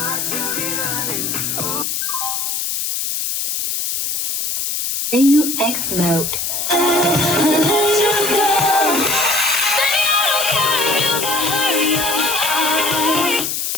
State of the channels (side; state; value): left; noise; hiss, 2 dB below the sound